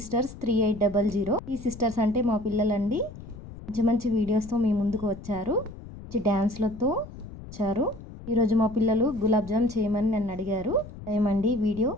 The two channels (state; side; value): noise; left; rumble, 14 dB below the sound